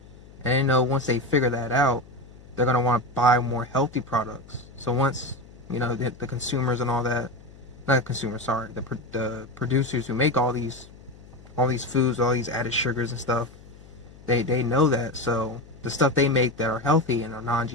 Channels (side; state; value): left; noise; hum, 21 dB below the sound